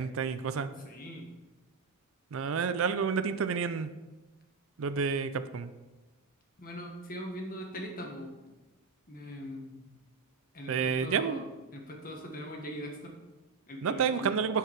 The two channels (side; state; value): left; quieter; 5.1 dB